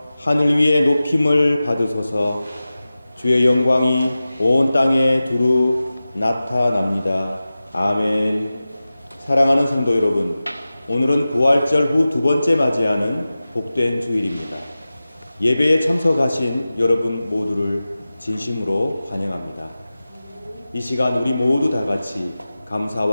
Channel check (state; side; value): inverted; both; correlation -0.96